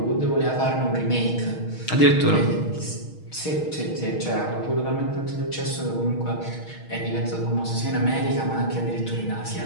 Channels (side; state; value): right; late; 6.4 ms